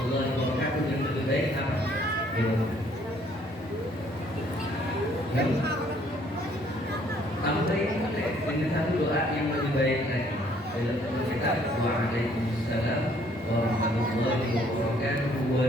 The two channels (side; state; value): both; normal; correlation 0.63